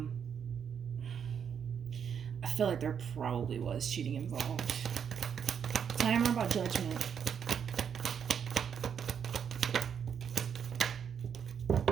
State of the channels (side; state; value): left; quieter; 7.6 dB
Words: feel like there probably was cheating involved. Tell me more about Judgment.